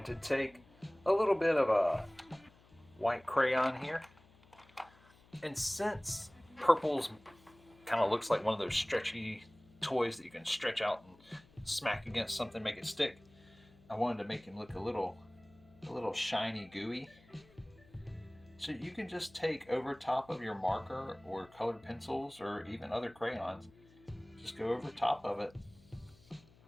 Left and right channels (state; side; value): noise; left; hum, 27 dB below the sound